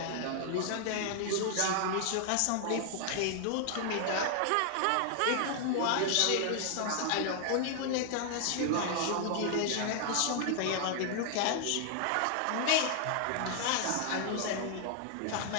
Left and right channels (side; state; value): both; different; correlation 0.00